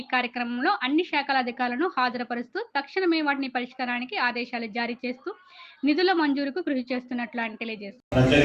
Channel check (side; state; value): both; identical; correlation 1.00